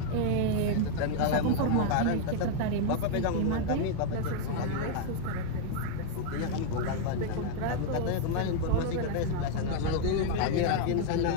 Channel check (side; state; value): both; different; correlation 0.00